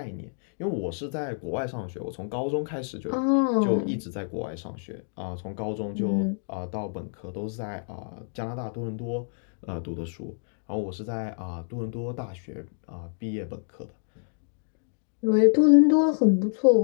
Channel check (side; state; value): right; silent; digital silence